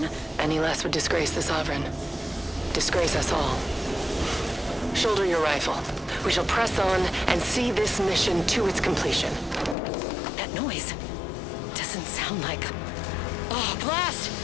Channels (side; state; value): right; drops out; at 9.8 s